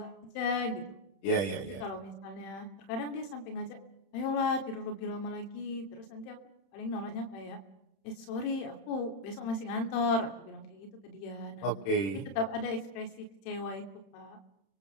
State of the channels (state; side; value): late; right; 31 ms